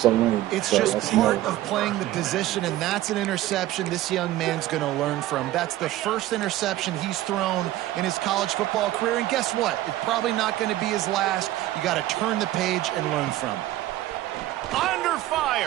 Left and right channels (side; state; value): left; quieter; 15.1 dB